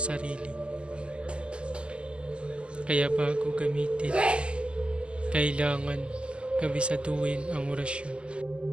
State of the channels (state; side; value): late; left; 0.057 ms